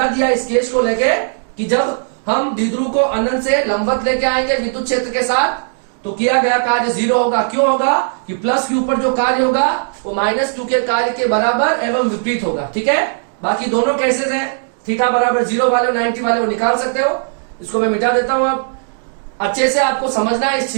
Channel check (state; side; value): silent; left; digital silence